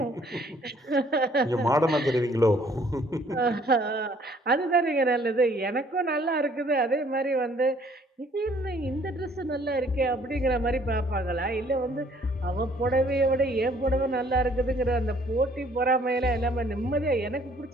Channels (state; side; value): normal; both; correlation 0.60